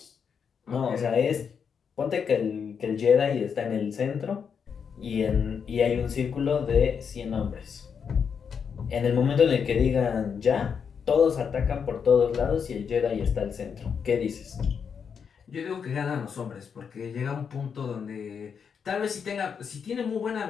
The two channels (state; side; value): quieter; right; 6.7 dB